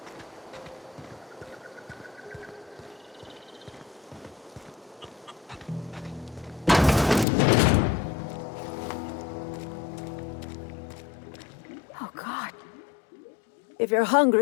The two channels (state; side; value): drops out; right; at 7.2 s